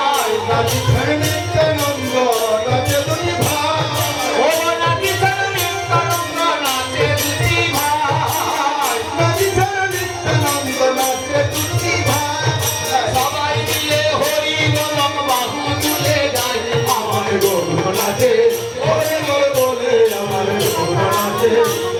রাজি ছাড়া নিত্যানন্দ নাচে দুটি ভাই, ও রাজি ছাড়া নিত্যানন্দ নাচে দুটি ভাই, রাজি ছাড়া নিত্যানন্দ নাচে দুটি ভাই। সবাই মিলে হরি বলম বাহু তুলে যায় আমার গৌর নাচে, হরি বলে আমার গৌর নাচে,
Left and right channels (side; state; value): both; identical; correlation 1.00